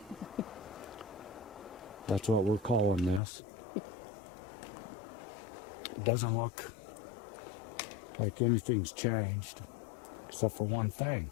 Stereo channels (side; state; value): right; drops out; at 3.2 s